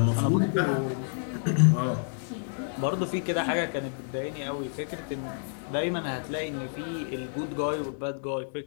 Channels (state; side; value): silent; right; digital silence